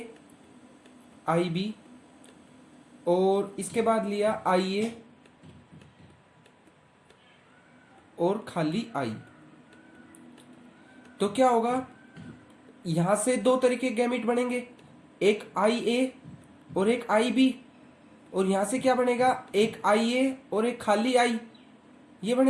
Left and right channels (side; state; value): both; identical; correlation 1.00